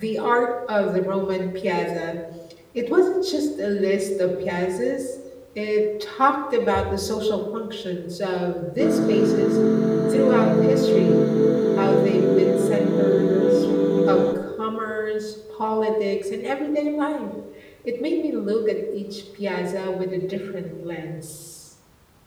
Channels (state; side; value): identical; both; correlation 1.00